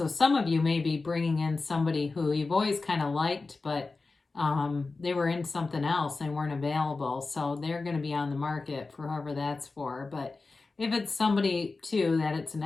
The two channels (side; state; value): right; quieter; 3.8 dB